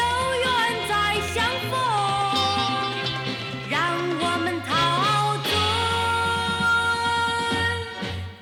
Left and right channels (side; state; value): both; identical; correlation 1.00